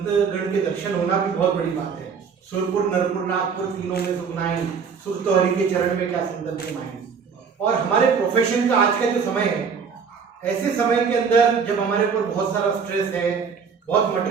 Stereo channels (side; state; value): left; quieter; 6.1 dB